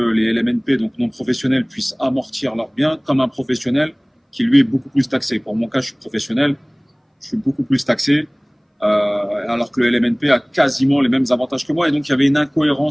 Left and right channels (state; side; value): identical; both; correlation 1.00